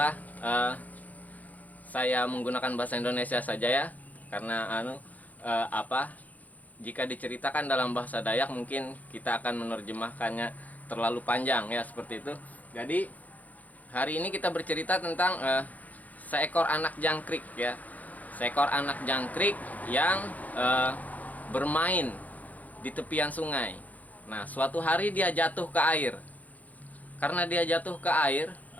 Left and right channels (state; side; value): late; right; 0.078 ms